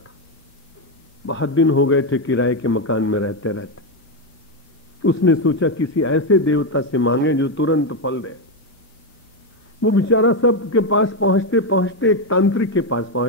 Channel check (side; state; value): both; normal; correlation 0.07